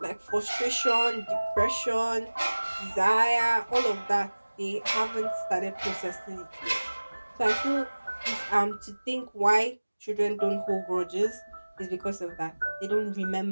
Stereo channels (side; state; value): both; inverted; correlation -1.00